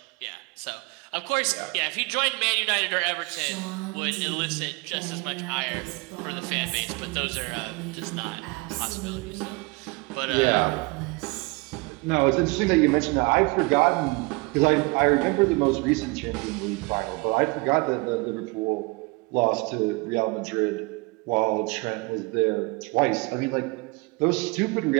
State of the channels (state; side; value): quieter; left; 27.0 dB